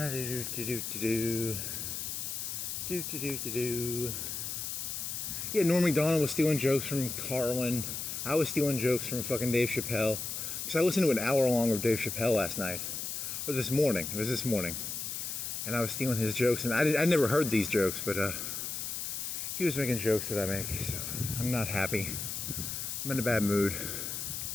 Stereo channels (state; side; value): noise; left; hiss, 4 dB below the sound